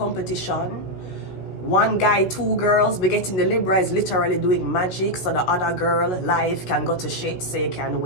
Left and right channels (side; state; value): right; late; 16 ms